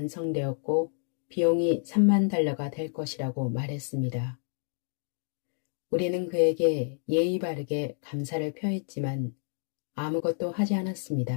비용이 3만 달러가 될 것이라고 말했습니다. 우리는 그에게 예의 바르게 감사를 표했지만 아무것도 하지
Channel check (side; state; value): right; silent; digital silence